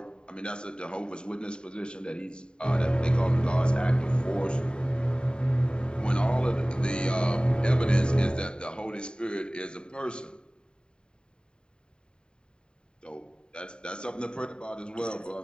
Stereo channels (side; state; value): right; late; 0.049 ms